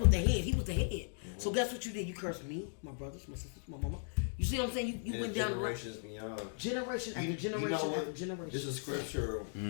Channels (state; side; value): silent; right; digital silence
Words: with the head. He was the head. So guess what you did? You cursed me, my brothers, my sisters, my mama. You see what I'm saying? You went down generations beyond. generation after generation You know what? after generation. There's a scripture